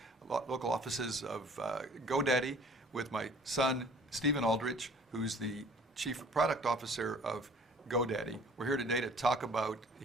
local offices of GoDaddy, with my son, Stephen Aldrich, who's the Chief Product Officer of GoDaddy. We're here today to talk about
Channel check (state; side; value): normal; both; correlation 0.51